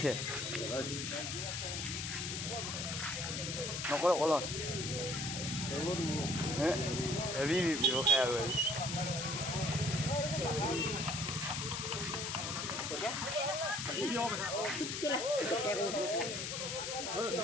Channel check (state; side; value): noise; left; hiss, 3 dB below the sound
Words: নকৰো কলত হেভি ব্যৱসায় আৰু